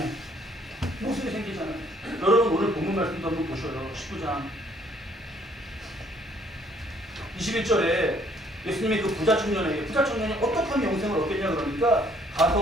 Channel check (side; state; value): both; normal; correlation 0.63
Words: 모순이 생기잖아요. 여러분 오늘 본문 말씀도 한번 보셔요. 19장 21절에 예수님이 그 부자 청년이 어떻게 하면 영생을 얻겠냐 그러니까